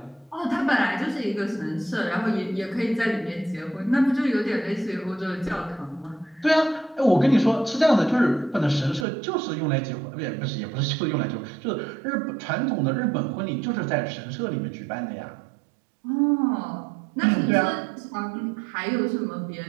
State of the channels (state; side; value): drops out; left; at 9.1 s